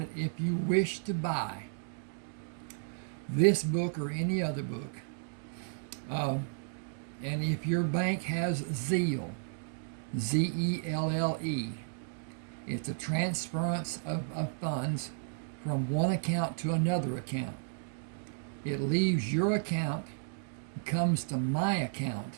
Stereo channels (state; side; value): silent; left; digital silence